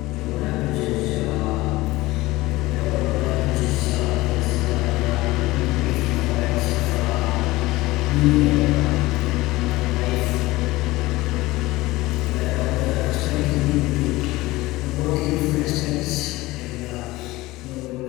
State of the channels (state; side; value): quieter; right; 19.3 dB